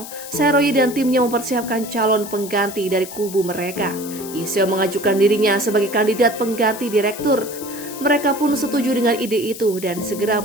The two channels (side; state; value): left; noise; hiss, 12 dB below the sound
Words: Seroyi dan timnya mempersiapkan calon pengganti dari kubu mereka. Yiseo mengajukan dirinya sebagai kandidat pengganti direktur. Mereka pun setuju dengan ide itu dan segera